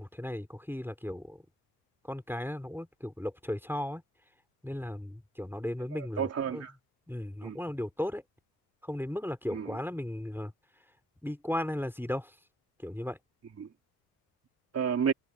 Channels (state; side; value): normal; both; correlation 0.63